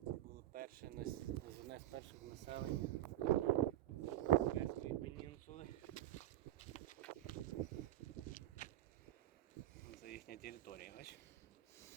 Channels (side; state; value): left; quieter; 13.8 dB